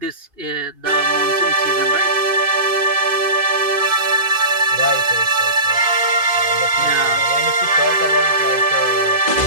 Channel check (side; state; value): left; late; 2.5 ms